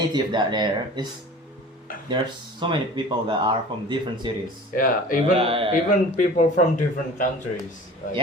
that there's so many people that are from different cities. Yeah. Yeah. Even people from different countries. Like,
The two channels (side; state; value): both; normal; correlation 0.41